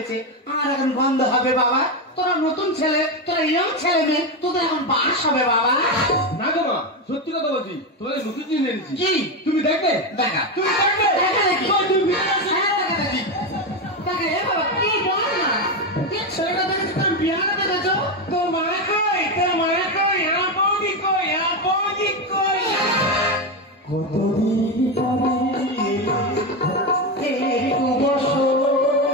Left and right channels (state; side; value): normal; both; correlation 0.12